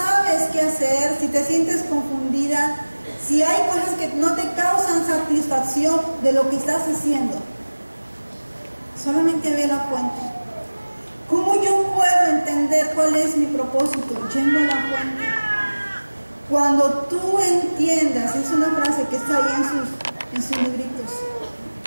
qué hacer, si te sientes confundida, si hay cosas que no te causan satisfacción de lo que estás haciendo, solamente ve la fuente. ¿Cómo yo puedo entender cuál es mi propósito? Yendo a la fuente. Cuando tú entiendas, es una frase que está ahí en sus libritos.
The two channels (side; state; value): both; inverted; correlation -1.00